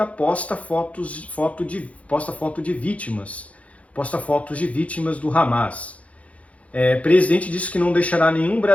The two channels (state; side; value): late; right; 0.065 ms